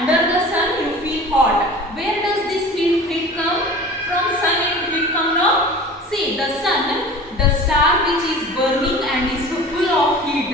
the sun, you feel hot. Where does this heat come? From sun it come now. See, the sun, the star which is burning and is full of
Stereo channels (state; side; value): normal; both; correlation 0.39